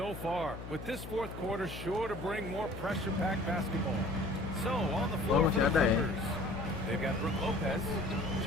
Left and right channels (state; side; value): noise; left; hum, 10 dB below the sound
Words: far. With this fourth quarter sure to bring more pressure-packed basketball. So, on the floor for masih the ada ya. Clippers. They've got Brook Lopez,